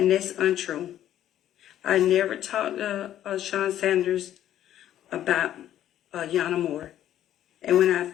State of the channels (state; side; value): quieter; right; 11.7 dB